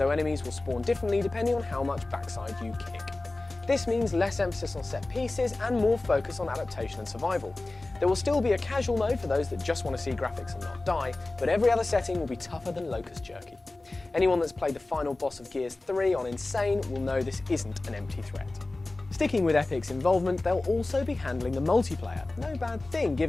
enemies will spawn differently depending on how much backside you kick. This means less emphasis on set pieces and more focus on adaptation and survival. There will still be a casual mode for those that just want to see graphics and not die, but every other setting will be tougher than Locust Jerky. Anyone that's played the final boss of Gears 3 on Insane will know this isn't an empty threat. Sticking with Epic's involvement, they'll also be handling the multiplayer, no bad thing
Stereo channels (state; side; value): quieter; right; 3.0 dB